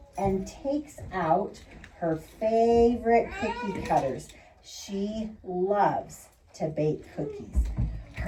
and takes out her favorite cookie cutters. She loves to bake cookies.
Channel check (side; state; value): both; identical; correlation 1.00